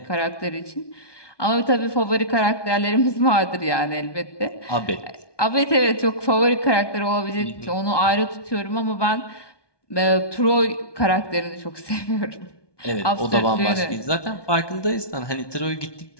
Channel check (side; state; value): right; late; 1.2 ms